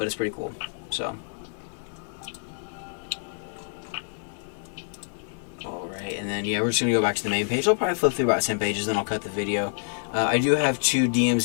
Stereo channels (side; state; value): right; silent; digital silence